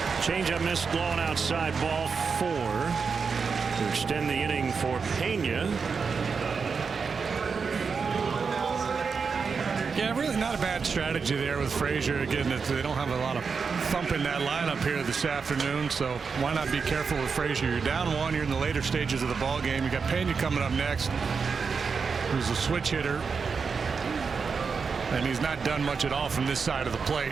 Changeup missed, blown outside, ball 4 to extend the inning for Pena. Yeah, really not a bad strategy there with Frazier. Again, they don't have a lot of thump in that lineup here this afternoon, so why not be careful with Frazier? You're down 1, you're in the later stages of the ball game. You got Pena coming up next, who's a switch hitter, and he's not done much at all from this side of the plate.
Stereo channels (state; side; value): quieter; left; 5.4 dB